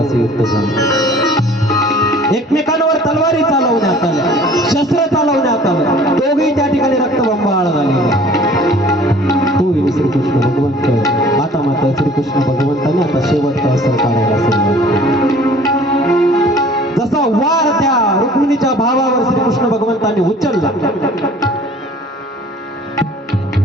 असे युद्ध झालं. एकमेकांवर तलवारी चालवण्यात आल्या, शस्त्र चालवण्यात आलं, दोघेही त्या ठिकाणी रक्तबंबाळ झाले. तो श्रीकृष्ण भगवंत आता मात्र श्रीकृष्ण भगवंताने आता शेवटचा अस्त्र काढायला सुरुवात केली. जसा वार त्या रुक्मिणीच्या भावावर श्रीकृष्ण भगवंताने उचलला,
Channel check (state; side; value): normal; both; correlation 0.50